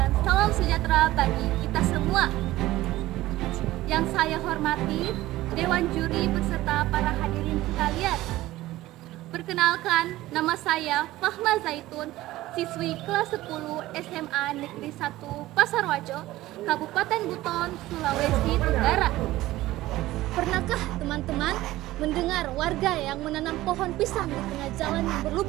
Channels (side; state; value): left; quieter; 16.7 dB